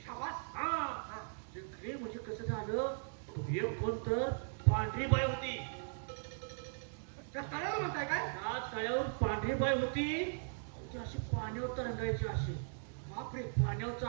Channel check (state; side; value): silent; left; digital silence